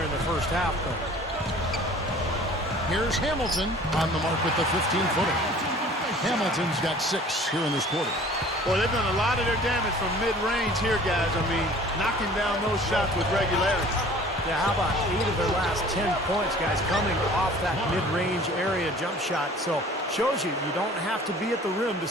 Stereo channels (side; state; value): both; normal; correlation 0.48